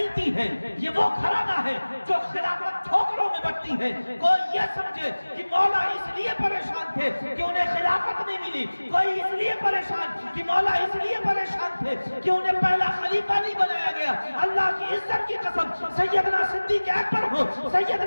ہے, یہ وہ گھرانہ ہے جو خلافت ٹھوکروں میں بڑھتی ہے. کوئی یہ سمجھے کہ مولا اس لیے پریشان تھے کہ انہیں خلافت نہیں ملی, کوئی اس لیے پریشان کہ مولا اس لیے پریشان تھے کہ انہیں پہلا خلیفہ نہیں بنایا گیا. اللہ کی عزت کی قسم, سیدنا صدیق اکبر ہو,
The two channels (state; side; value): inverted; both; correlation -1.00